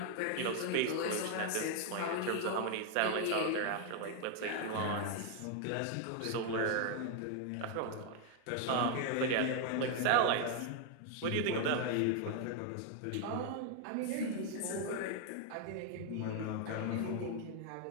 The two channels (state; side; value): different; both; correlation 0.00